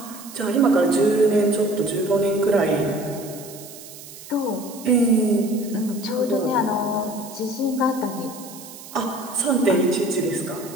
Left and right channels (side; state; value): right; noise; hiss, 16 dB below the sound